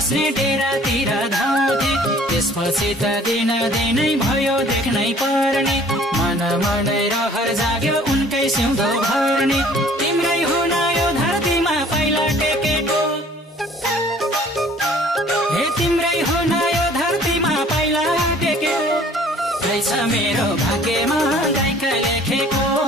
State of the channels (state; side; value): normal; both; correlation 0.54